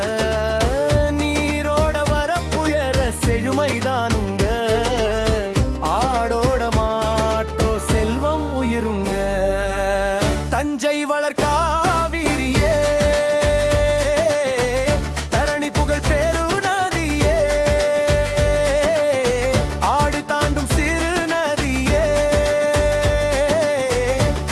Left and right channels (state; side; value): identical; both; correlation 1.00